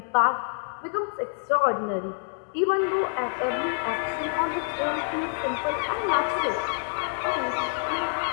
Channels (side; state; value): right; silent; 60 dB below the other